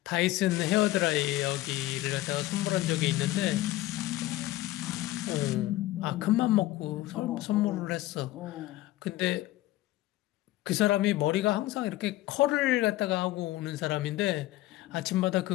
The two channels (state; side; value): quieter; right; 16.5 dB